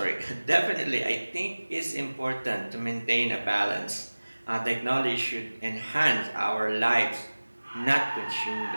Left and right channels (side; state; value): both; inverted; correlation -1.00